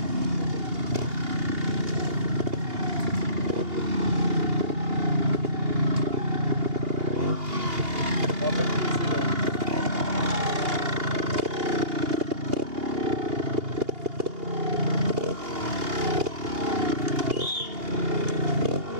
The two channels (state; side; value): late; left; 2.8 ms